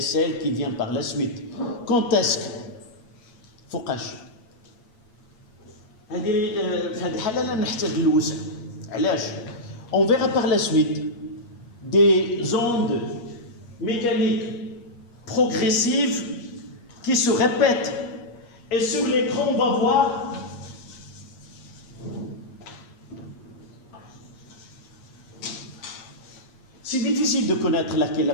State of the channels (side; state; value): right; late; 8.5 ms